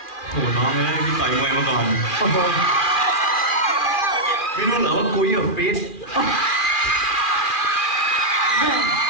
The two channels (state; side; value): late; right; 2.4 ms